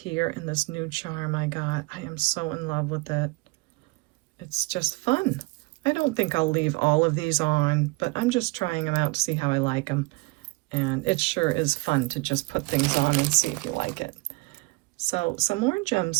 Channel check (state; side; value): quieter; left; 26.1 dB